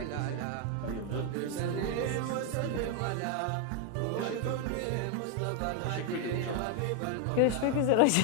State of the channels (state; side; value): different; both; correlation 0.00